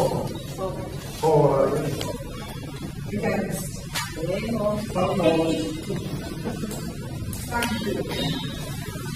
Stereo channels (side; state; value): both; identical; correlation 1.00